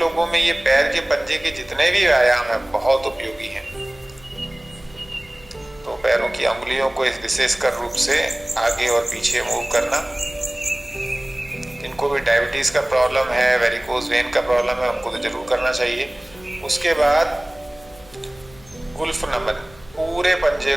में ये पैर के पंजे के जितने भी व्यायाम हैं बहुत उपयोगी हैं। तो पैरों की अंगुलियों को इस विशेषकर रूप से आगे और पीछे मूव करना। जिनको भी डायबिटीज का प्रॉब्लम है, वेरिकोज वेन का प्रॉब्लम है, उनको तो जरूर करना चाहिए। उसके बाद गुल्फ नमन, पूरे पंजे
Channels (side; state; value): left; noise; hum, 24 dB below the sound